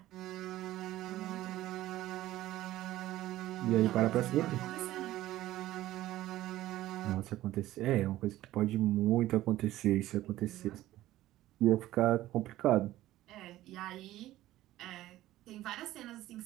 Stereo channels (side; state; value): left; quieter; 15.2 dB